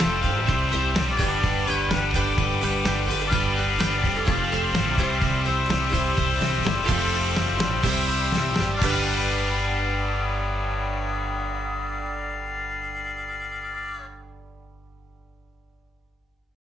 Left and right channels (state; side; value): normal; both; correlation 0.81